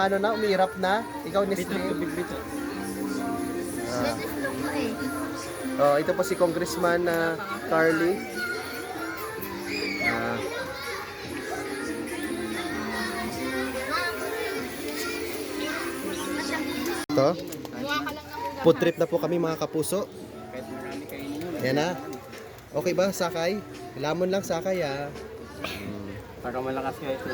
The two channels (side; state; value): both; identical; correlation 1.00